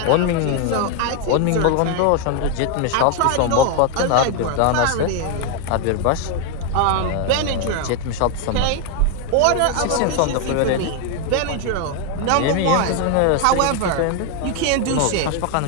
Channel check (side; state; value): both; different; correlation 0.01